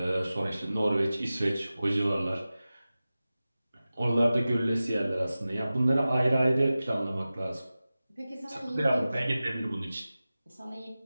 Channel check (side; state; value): both; inverted; correlation -0.96